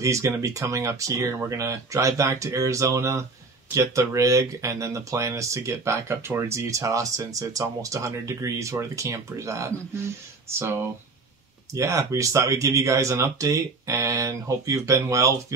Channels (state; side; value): quieter; left; 3.9 dB